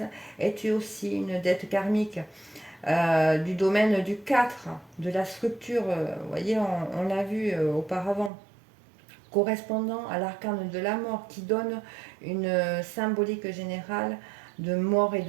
est aussi une dette karmique du domaine du 4, de la structure. Vous voyez, on l'a vu auparavant, correspondant à l'arcane de la mort, qui donne une symbolique générale de mort et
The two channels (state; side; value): drops out; left; at 8.3 s